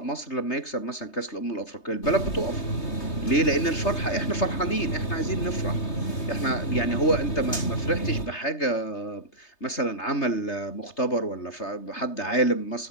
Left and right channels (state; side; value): late; right; 3.3 ms